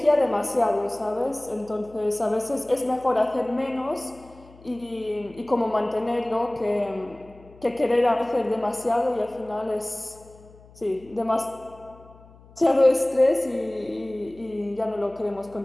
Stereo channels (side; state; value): left; noise; hum, 24 dB below the sound